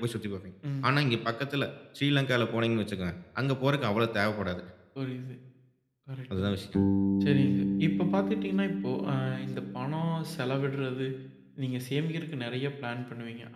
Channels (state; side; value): identical; both; correlation 1.00